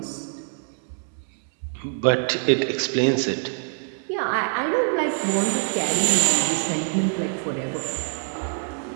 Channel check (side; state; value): left; silent; 62 dB below the other